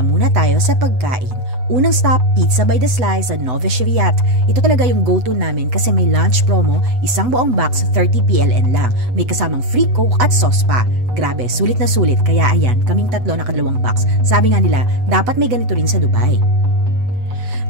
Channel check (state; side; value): late; left; 8.0 ms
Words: muna tayo sa pagkain. Unang stop, Pizza by the Slice sa Nowy Świat. Ito talaga yung go-to namin kasi may lunch promo, isang buong box 30 PLN lang. May kasamang free coke at sauce pa. Grabe, sulit na sulit. Kaya ayan, kaming tatlo nakadalawang box. Sabi nga nila, dapat may ganito rin sa Dubai.